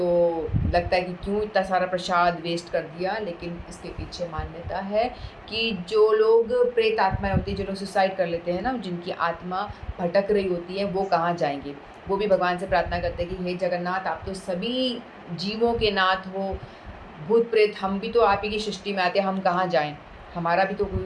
लगता है कि क्यों इतना सारा प्रसाद वेस्ट कर दिया, लेकिन इसके पीछे मान्यता है कि जो लोग प्रेत आत्माएं होती हैं, जो लोग सुसाइड कर लेते हैं ना, जिनकी आत्मा भटक रही होती है, वो कहाँ जाएंगे। वो भी भगवान से प्रार्थना करते हैं कि हे जगन्नाथ, आप तो सभी जीवों के नाथ हो, भूत प्रेत हम भी तो आप ही की सृष्टि में आते हैं, हम कहाँ जाएं, हमारा भी तो कोई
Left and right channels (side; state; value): both; identical; correlation 1.00